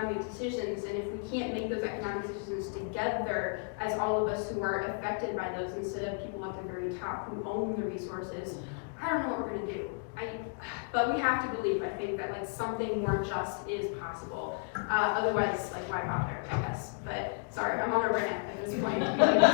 decisions, and if we can't make those economic decisions together as all of us who are affected by those instead of people at the very top who own the resources, I don't know what we're gonna do. But we have to believe, I think, that something more just is possible. Otherwise, why bother, I guess. But sorry, I'm on a rant at this point.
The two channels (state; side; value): quieter; right; 36.4 dB